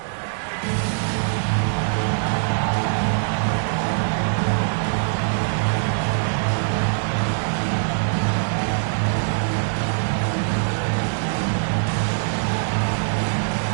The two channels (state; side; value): silent; left; digital silence